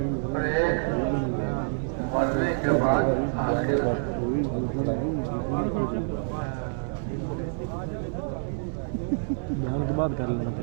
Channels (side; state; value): left; silent; digital silence